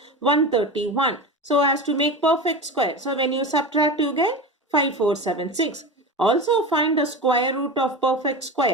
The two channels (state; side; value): normal; both; correlation 0.26